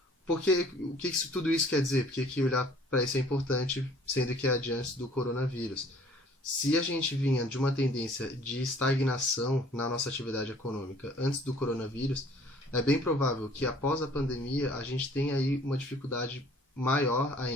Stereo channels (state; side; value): normal; both; correlation 0.55